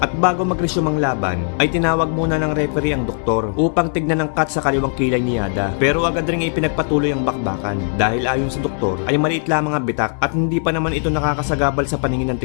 bago mag-resume ang laban, ay tinawag muna ng referee ang doktor upang tignan ang cut sa kaliwang kilay ni Yada. Pero agad rin ipinagpatuloy ang bakbakan dahil ayon sa doktor ay maliit lamang ang bitak at hindi pa naman ito nakakasagabal sa paningin ng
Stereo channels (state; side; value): silent; right; 59 dB below the other